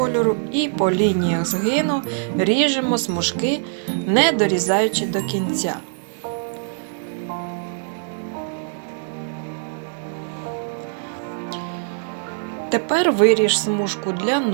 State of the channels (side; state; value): left; silent; digital silence